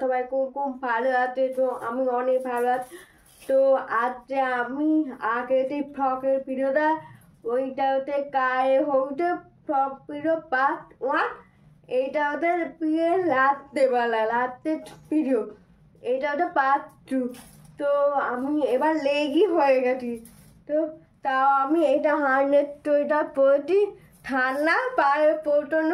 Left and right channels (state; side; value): identical; both; correlation 1.00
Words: সবাই খুব খুব ভালো আছে। তো আমি অনেক ভালো আছি। তো আজকে আমি আগে যে ফ্রকের ভিডিওটা, ওইটা হচ্ছে গায়ে হচ্ছে ফ্রক ভিডিও পার্ট 1। এইটা হচ্ছে বিয়ের রাত্রের ভিডিও। এটা হচ্ছে পার্ট 2। তো আমি এবার লেগই হয়ে গেছি। তো তাও আমি এটা হার্নেট সোয়েটার পরেছি, ঠান্ডা পায়ে প্রচণ্ড